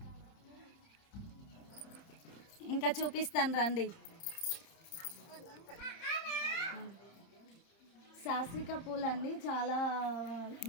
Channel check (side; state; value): right; late; 30 ms